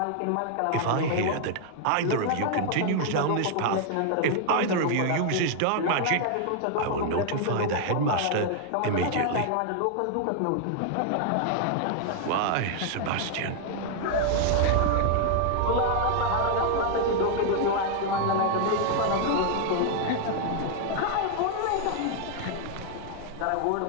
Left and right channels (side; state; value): both; different; correlation 0.00